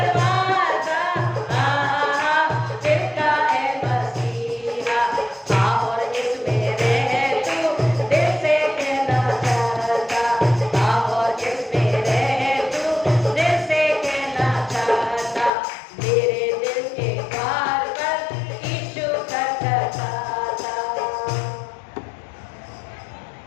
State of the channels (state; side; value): drops out; right; at 15.5 s